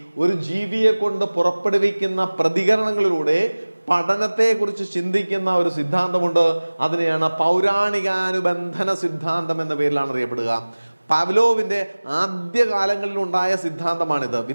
ഒരു ജീവിയെ കൊണ്ട് പുറപ്പെടുവിക്കുന്ന പ്രതികരണങ്ങളിലൂടെ പഠനത്തെക്കുറിച്ച് ചിന്തിക്കുന്ന ഒരു സിദ്ധാന്തമുണ്ട്. അതിനെയാണ് പൗരാണികാനുബന്ധന സിദ്ധാന്തം എന്ന പേരിലാണ് അറിയപ്പെടുക. പാവ്ലോവിന്റെ ആദ്യകാലങ്ങളിൽ ഉണ്ടായ സിദ്ധാന്തമാണിത്.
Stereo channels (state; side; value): inverted; both; correlation -1.00